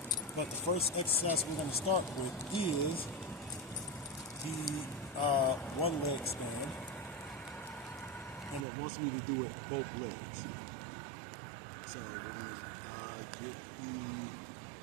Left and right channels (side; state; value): left; drops out; at 8.7 s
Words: But the first exercise we're going to start with is the one leg stand. And it wants me to do it both legs. So we're going to get